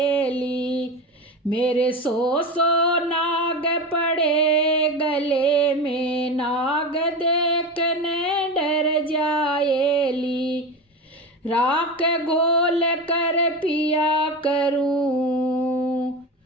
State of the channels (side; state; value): both; normal; correlation 0.23